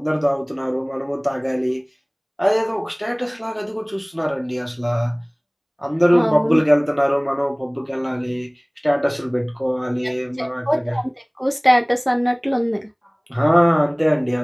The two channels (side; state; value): both; identical; correlation 1.00